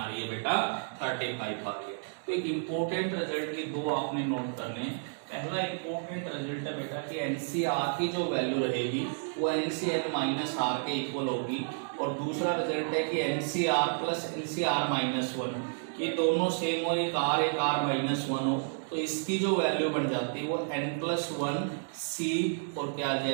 रही है बेटा, 35 आ गई। तो एक इम्पोर्टेंट रिजल्ट की दो आपने नोट करने। पहला इम्पोर्टेंट रिजल्ट है बेटा कि एनसीआर की जो वैल्यू रहेगी वो एनसीएल माइनस आर के इक्वल होगी, और दूसरा रिजल्ट है कि एनसीआर प्लस एनसीआर माइनस 1 ये दोनों सेम हो, एक आर माइनस 1 हो, तो इसकी जो वैल्यू बन जाती है वो n+1 c और क्या आ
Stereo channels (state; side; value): silent; left; digital silence